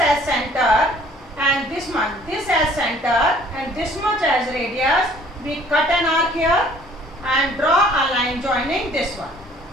center and this much, this as center and this much as radius, we cut an arc here and draw a line joining this one.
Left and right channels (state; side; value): normal; both; correlation 0.56